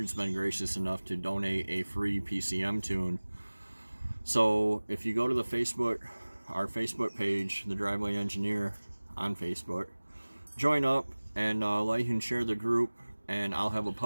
been gracious enough to donate a free PCM tune. So if you go to the our Facebook page, The Driveway Engineer on Facebook, join up and like and share the group, and I'll have a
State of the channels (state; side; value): inverted; both; correlation -1.00